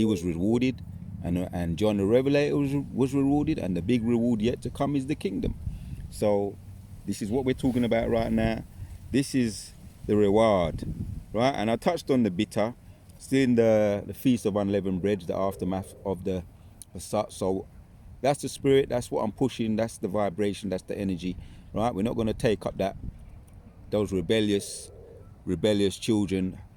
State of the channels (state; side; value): identical; both; correlation 1.00